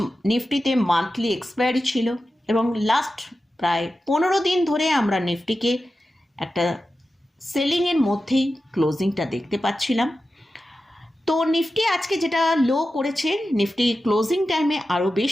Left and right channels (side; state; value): both; normal; correlation 0.92